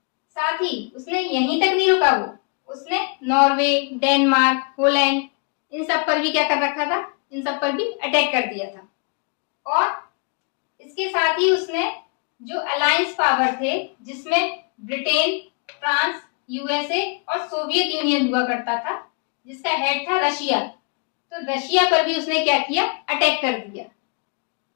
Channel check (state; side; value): quieter; right; 36.2 dB